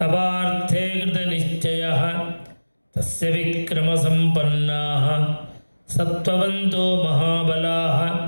कृतनिश्चयः. तस्य विक्रमसम्पन्नाः ಸತ್ವವಂತೋ ಮಹಾಬಲಾಃ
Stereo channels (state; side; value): inverted; both; correlation -1.00